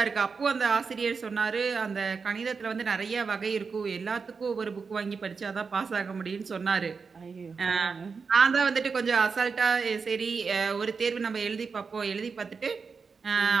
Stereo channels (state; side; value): quieter; left; 5.2 dB